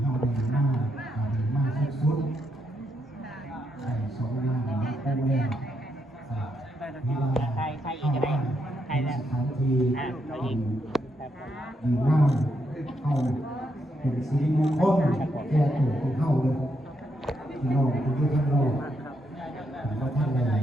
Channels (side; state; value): both; normal; correlation 0.79